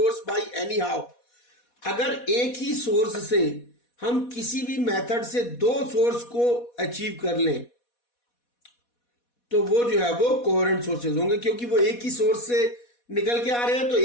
by any how. अगर एक ही सोर्स से हम किसी भी मेथड से दो सोर्स को अचीव कर लें तो वो जो है वो कोहेरेंट सोर्सेज होंगे, क्योंकि वो एक ही सोर्स से निकल के आ रहे हैं। तो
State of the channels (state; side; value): late; right; 4.1 ms